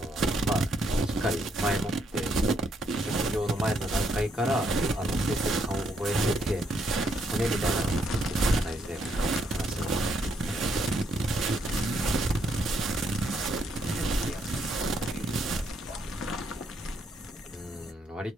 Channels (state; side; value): normal; both; correlation 0.74